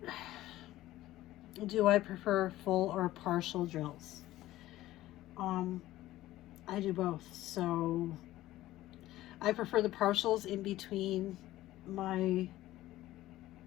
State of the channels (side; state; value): right; quieter; 15.6 dB